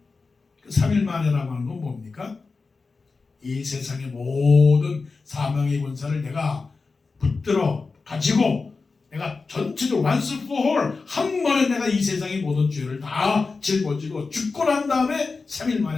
3일 만에라고 하는 건 뭡니까? 이 세상의 모든 사망의 권세를 내가 붙들어 가지고 내가 전체적으로 once for all 한 번에 내가 이 세상의 모든 죄를 다 짊어지고 죽고 난 다음에 3일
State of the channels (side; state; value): right; quieter; 4.2 dB